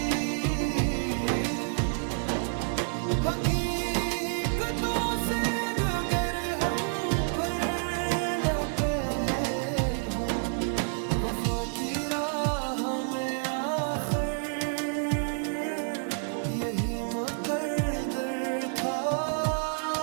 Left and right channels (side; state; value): left; silent; 59 dB below the other